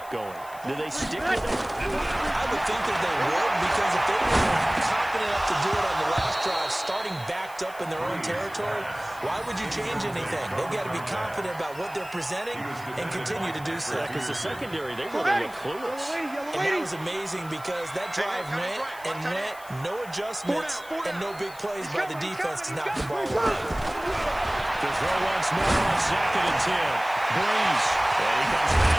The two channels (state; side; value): noise; left; hiss, 21 dB below the sound